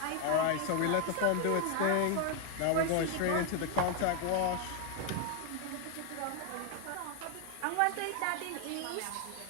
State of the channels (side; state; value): both; different; correlation 0.00